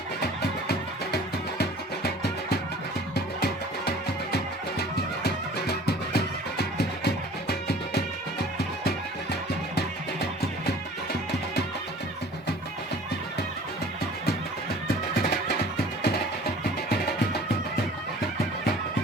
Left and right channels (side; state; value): both; normal; correlation 0.47